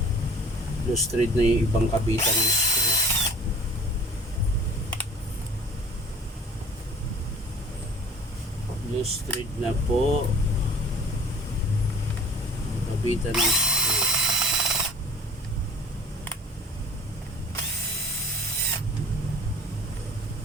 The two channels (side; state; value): both; normal; correlation 0.46